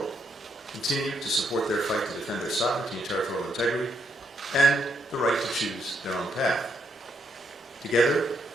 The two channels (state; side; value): normal; both; correlation 0.76